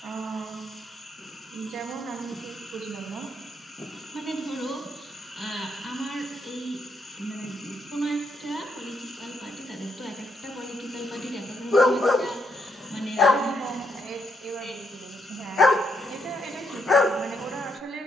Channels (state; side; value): normal; both; correlation 0.77